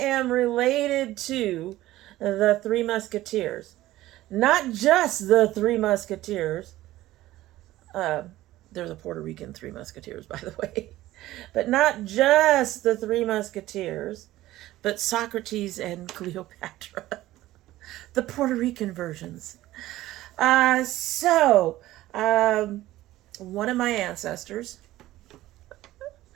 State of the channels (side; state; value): left; quieter; 15.8 dB